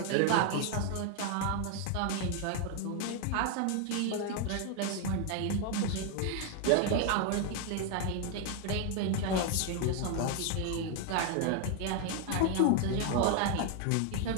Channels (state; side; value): different; both; correlation 0.01